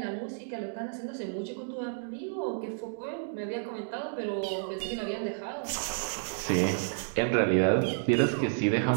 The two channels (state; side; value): silent; left; digital silence